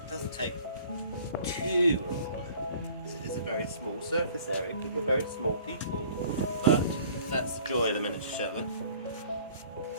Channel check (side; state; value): both; inverted; correlation -0.52